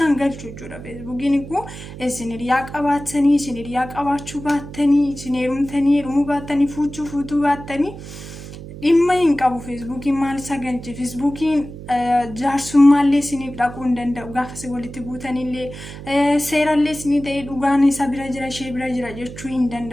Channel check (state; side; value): noise; right; hum, 13 dB below the sound